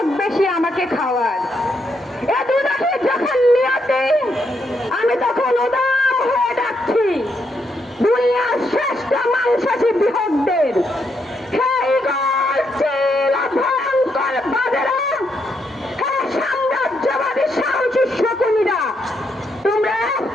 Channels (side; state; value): both; normal; correlation 0.78